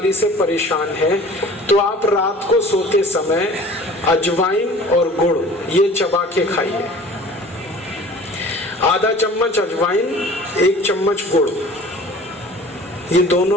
से परेशान हैं, तो आप रात को सोते समय अजवाइन और गुड़ ये चबा के खाइए। आधा चम्मच अजवाइन, एक चम्मच गुड़, ये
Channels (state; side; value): normal; both; correlation 0.45